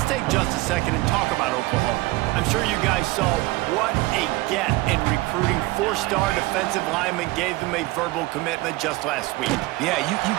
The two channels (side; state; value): left; quieter; 20.7 dB